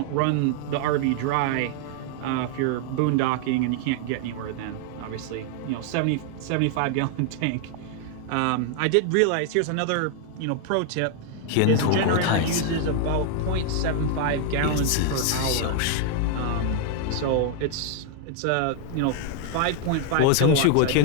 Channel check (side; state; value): both; different; correlation 0.00